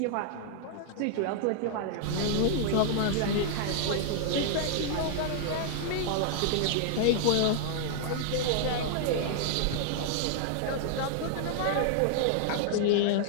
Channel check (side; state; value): both; different; correlation -0.01